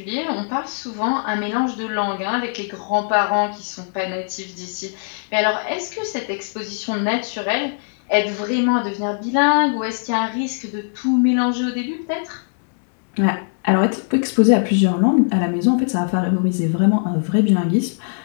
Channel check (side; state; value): right; silent; digital silence